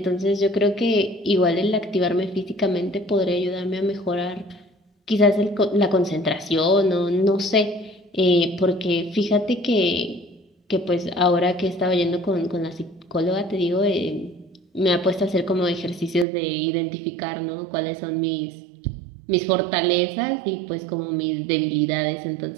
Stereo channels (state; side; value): drops out; left; at 16.2 s